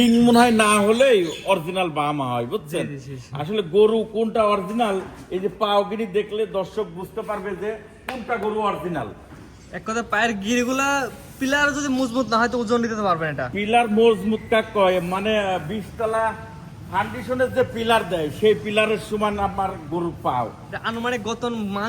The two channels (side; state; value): both; identical; correlation 1.00